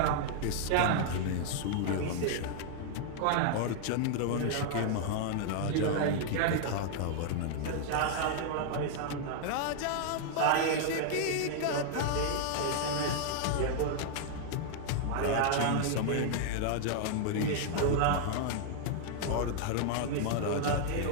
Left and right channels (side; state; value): both; different; correlation -0.01